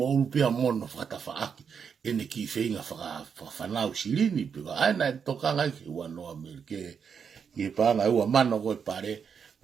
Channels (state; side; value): quieter; left; 6.7 dB